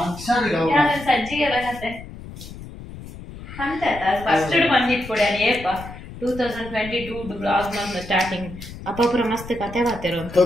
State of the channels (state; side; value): noise; left; rumble, 14 dB below the sound